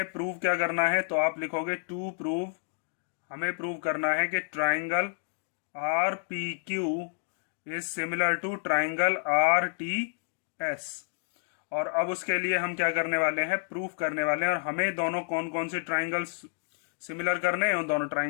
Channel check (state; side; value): silent; right; digital silence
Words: प्रूव क्या करना है, तो आप लिखोगे टू प्रूव, हमें प्रूव करना है कि triangle R P Q is similar to triangle R T S. और अब उसके लिए हम क्या करने वाले हैं, प्रूफ करने वाले हैं। और हमें दोनों कौन कौन से ट्राइंगल्स सिमिलर करने हैं, उन दोनों